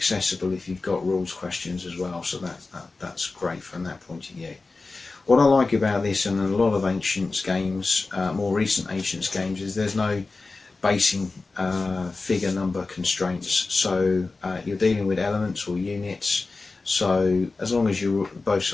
if you've got rules questions as well, so that's great from that point of view. What I like about this and a lot of Ancients games, more recent Ancients games, is there's no basing figure number constraints, so you're dealing with elements or units, so as long as both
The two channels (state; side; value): quieter; right; 3.7 dB